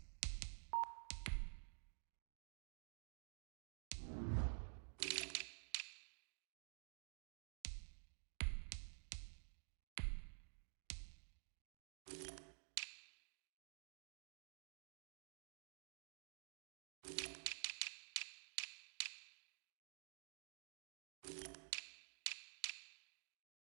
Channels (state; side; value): silent; left; digital silence